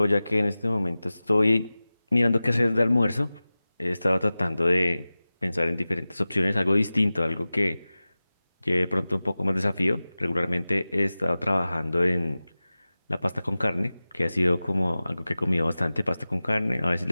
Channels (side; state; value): both; inverted; correlation -0.97